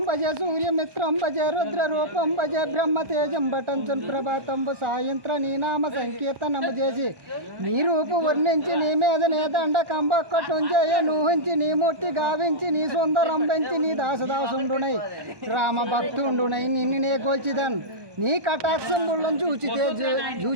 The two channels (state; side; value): late; left; 1.2 ms